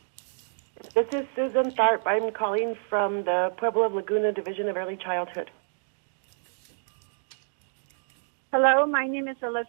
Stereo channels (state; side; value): silent; left; digital silence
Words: This is Susan Tharp. I'm calling from the Pueblo of Laguna Division of Early Childhood. Hello, my name is